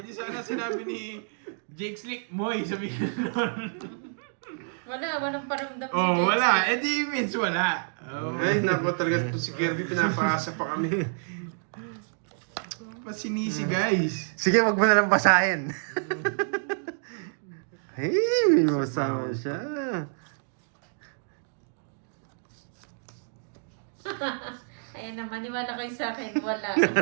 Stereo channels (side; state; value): left; silent; digital silence